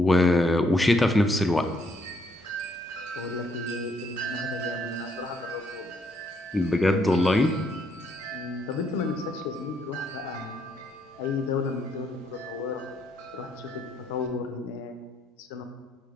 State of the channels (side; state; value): both; normal; correlation 0.72